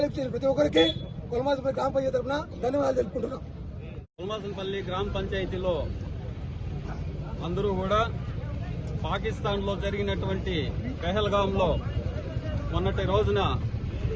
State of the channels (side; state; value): both; identical; correlation 1.00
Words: చేసిన ప్రతి ఒక్కరికి పొలమాసనపల్లి గ్రామ పంచాయతీ తరఫున ధన్యవాదాలు తెలుపుకుంటున్నాం. పొలమాసనపల్లి గ్రామ పంచాయతీలో అందరూ కూడా పాకిస్తాన్ లో జరిగినటువంటి పెహల్గాంలో మొన్నటి రోజున